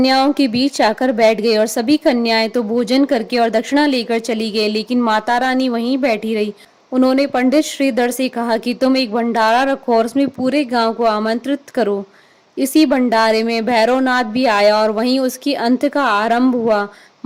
के बीच आकर बैठ गई और सभी कन्याएं तो भोजन करके और दक्षिणा लेकर चली गई, लेकिन माता रानी वहीं बैठी रही। उन्होंने पंडित श्रीधर से कहा कि तुम एक भंडारा रखो और उसमें पूरे गांव को आमंत्रित करो। इसी भंडारे में भैरवनाथ भी आया और वहीं उसकी अंत का आरंभ हुआ।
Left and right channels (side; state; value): both; identical; correlation 1.00